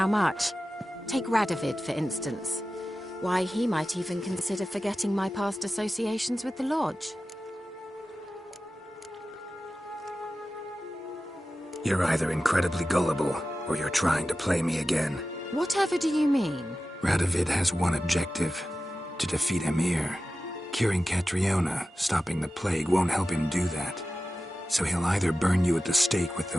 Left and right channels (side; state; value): both; normal; correlation 0.94